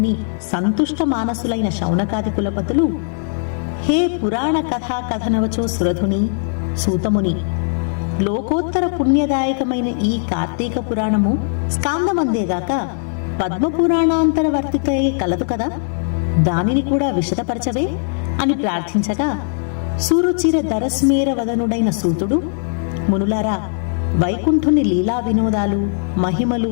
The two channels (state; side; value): silent; right; 67 dB below the other